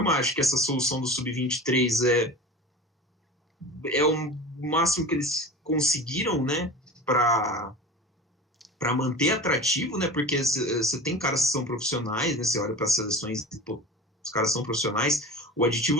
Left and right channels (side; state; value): both; normal; correlation 0.34